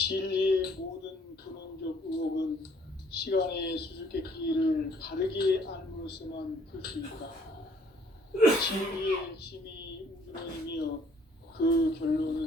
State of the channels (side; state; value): both; normal; correlation 0.61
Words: 모든 근원적 의혹은 시간의 수수께끼를 바르게 알므로써만 풀 수 있다. 진리의 핵심이 우주론이며 그